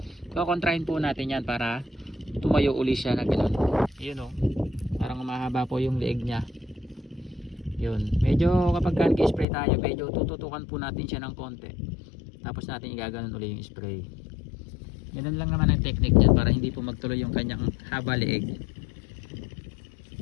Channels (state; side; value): drops out; right; at 9.5 s